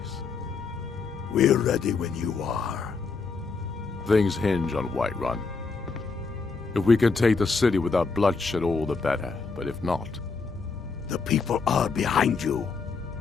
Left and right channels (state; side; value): quieter; right; 4.6 dB